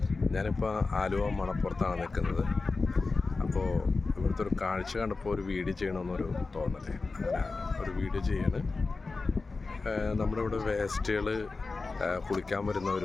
ഞാനിപ്പോൾ ആലുവ മണപ്പുറത്താണ് നിൽക്കുന്നത്. അപ്പോൾ ഇവിടുത്തെ ഒരു കാഴ്ച കണ്ടപ്പോൾ ഒരു വീഡിയോ ചെയ്യണമെന്നൊരു തോന്നലേ, അങ്ങനെ ഒരു വീഡിയോ ചെയ്യാണ്. നമ്മുടെ ഇവിടെ വേസ്റ്റുകൾ കുളിക്കാൻ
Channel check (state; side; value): quieter; right; 3.9 dB